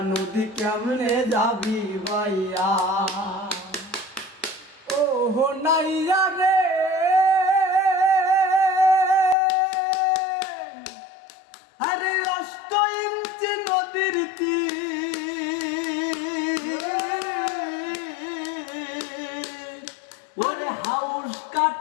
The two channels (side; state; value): right; drops out; at 9.3 s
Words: নদী কেমনে যাবি ভাইয়া। ও নাইয়া রে আরে 8 ইঞ্চি নদীর তীর, ওরে হাউস